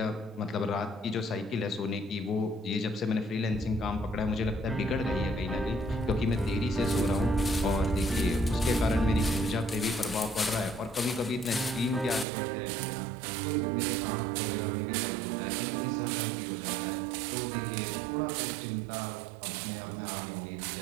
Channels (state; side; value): drops out; left; at 12.2 s